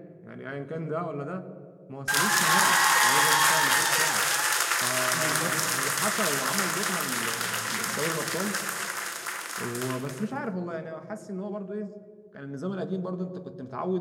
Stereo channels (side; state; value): both; identical; correlation 1.00